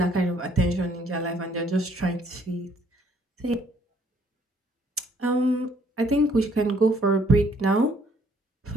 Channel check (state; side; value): normal; both; correlation 0.64